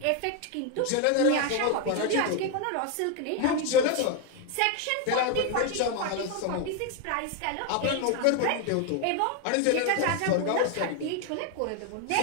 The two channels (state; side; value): different; both; correlation 0.01